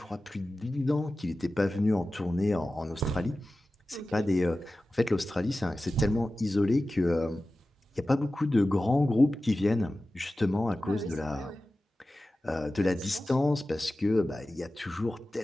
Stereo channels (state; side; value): normal; both; correlation 0.95